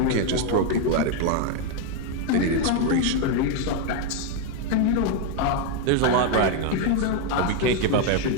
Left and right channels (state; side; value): different; both; correlation 0.01